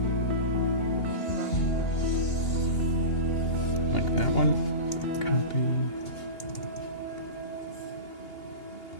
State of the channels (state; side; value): late; right; 2.8 ms